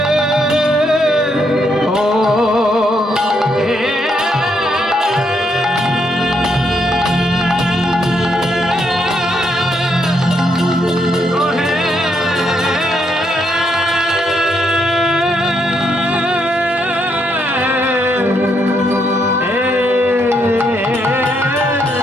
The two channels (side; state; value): both; normal; correlation 0.76